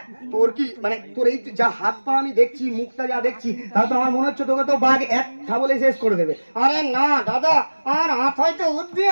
তোর কি মানে তোর এই যা হাত পা আমি দেখছি, মুখটা যা দেখছি, তাহলে তো আমার মনে হচ্ছে তোকে তো বাঘ এক খাবলে শেষ করে দেবে। আরে না দাদা, আমার হাত হয়তো বুদ্ধি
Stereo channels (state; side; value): inverted; both; correlation -1.00